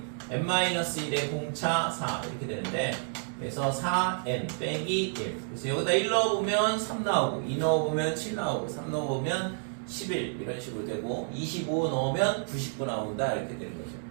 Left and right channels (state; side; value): silent; left; digital silence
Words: n-1의 공차 4 이렇게 되는데, 그래서 4n 빼기 1. 그래서 여기다 1 넣어보면 3 나오고 2 넣어보면 7 나오고 3 넣어보면 11 이런 식으로 되고 25 넣으면 99 나온다 이렇게 되는 거죠.